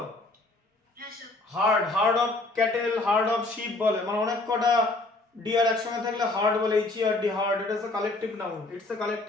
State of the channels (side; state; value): right; quieter; 3.0 dB